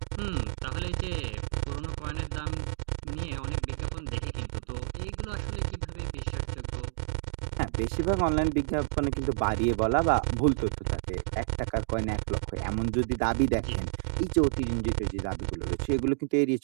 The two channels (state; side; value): silent; left; digital silence